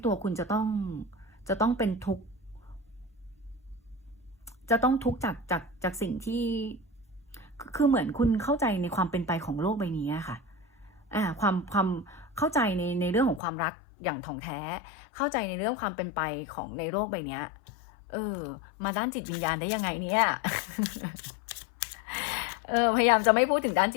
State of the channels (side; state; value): right; drops out; at 13.4 s